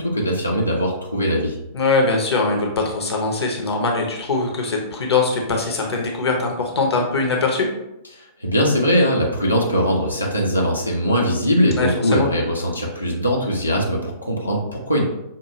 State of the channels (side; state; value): both; inverted; correlation -0.49